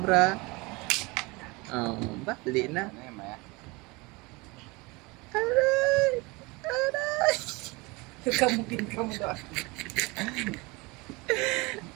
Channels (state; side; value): quieter; left; 25.2 dB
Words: Oh, bali na. Ano yan, Maya? Aray! Aray! Kamukin ka mo doon.